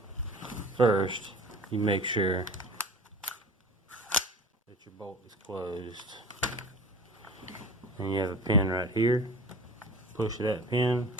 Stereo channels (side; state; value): both; normal; correlation 0.39